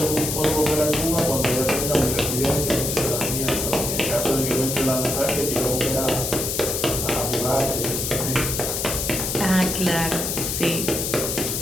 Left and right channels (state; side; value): noise; left; hiss, 2 dB below the sound